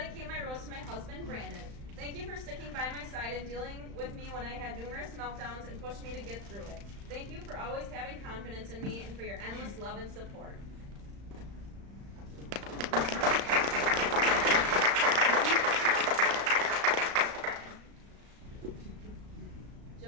my rose to my husband, Brandon. Thank you for sticking by my side and dealing with me when I had numerous meltdowns and pushed me to get through it. Thank you for always having confidence in me and for your endless love and support.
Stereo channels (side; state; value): left; late; 35 ms